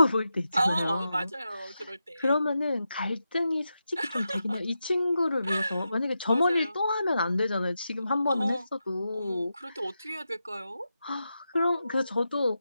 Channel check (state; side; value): inverted; both; correlation -0.89